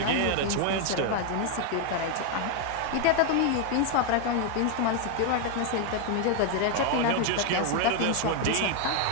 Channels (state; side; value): different; both; correlation 0.01